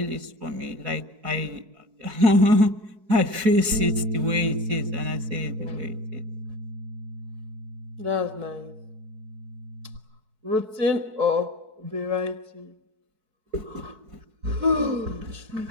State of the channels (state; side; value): late; left; 4.6 ms